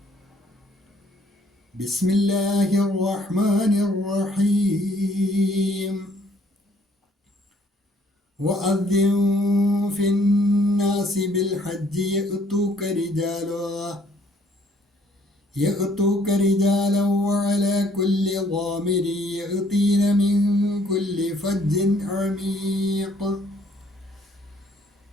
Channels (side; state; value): both; normal; correlation 0.63